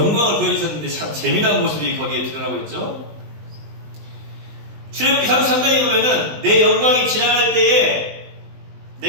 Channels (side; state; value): left; late; 20 ms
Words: 보여주셨는데 참 재미난 모습이 거기에 드러나고 있죠. 출애굽기 33장에 보면은 내 영광이 지나갈 때에